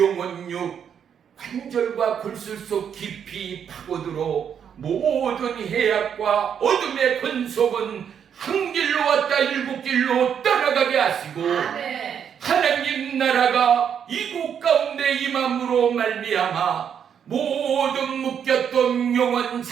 관절과 골술 속 깊이 파고들어 모든 해악과 어둠의 권속은 한 길로 왔다 일곱 길로 떠나가게 하시고 하나님 나라가 이곳 가운데 임함으로 말미암아 모든 묶였던 영혼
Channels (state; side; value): quieter; left; 8.1 dB